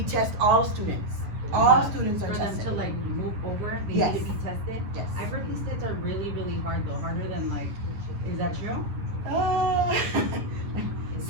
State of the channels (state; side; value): late; left; 9.8 ms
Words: test all students. All students are for tested. them to like move over, they Yes. need to be tested. Yes. I've heard these tests are really, really hard though, harder than like, is that true?